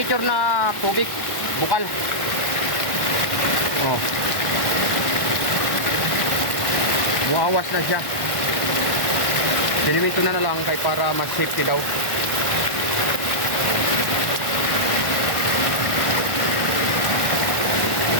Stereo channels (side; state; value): right; late; 1.1 ms